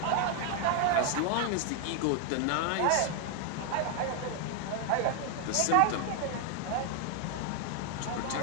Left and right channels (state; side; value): different; both; correlation 0.01